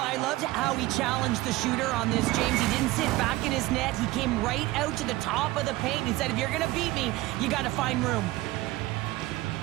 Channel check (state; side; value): quieter; left; 18.5 dB